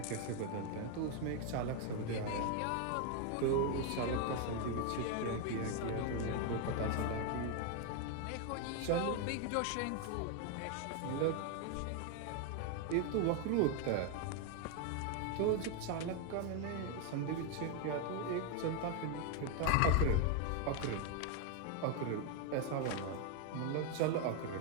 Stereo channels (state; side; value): different; both; correlation 0.01